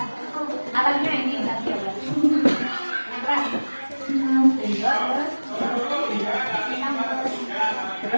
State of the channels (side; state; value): both; inverted; correlation -1.00